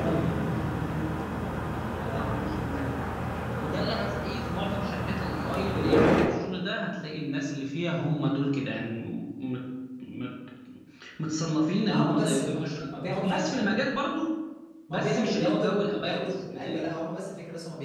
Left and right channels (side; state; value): both; identical; correlation 1.00